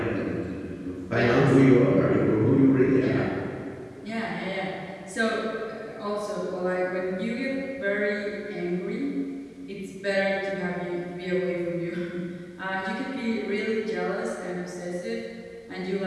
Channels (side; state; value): both; identical; correlation 1.00